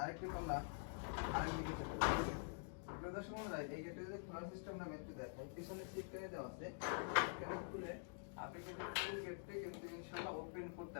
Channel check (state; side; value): silent; right; digital silence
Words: আরেকটি পাল্লা আরেকদিকে চলে যাবে। দর্শক বন্ধুরা, এই গেটে যদি খোলার সিস্টেমটা আমি একটু দেখাই, পিছনে সিটকারে দেওয়া আছে, এখানে খুলে আপনি কিন্তু ফুল গেটটি কিন্তু ইনশাআল্লাহ ওপেন করতে